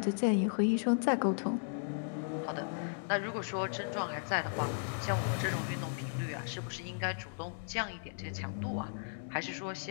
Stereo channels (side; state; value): right; silent; digital silence